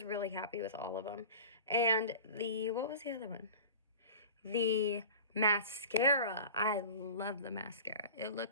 really happy with all of them. And what was the other one? The Mascara. I love the mascara. It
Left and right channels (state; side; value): inverted; both; correlation -0.36